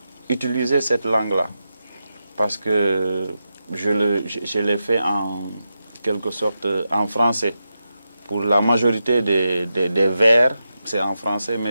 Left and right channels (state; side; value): inverted; both; correlation -0.89